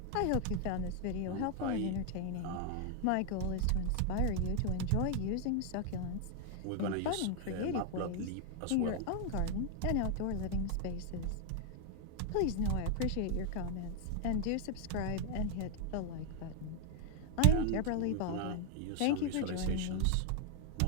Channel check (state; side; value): different; both; correlation 0.00